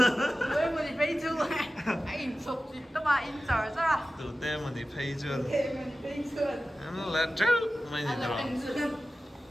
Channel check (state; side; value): normal; both; correlation 0.95